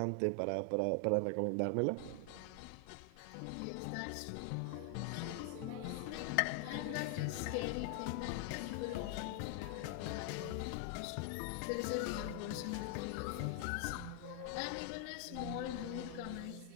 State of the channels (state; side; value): different; both; correlation 0.00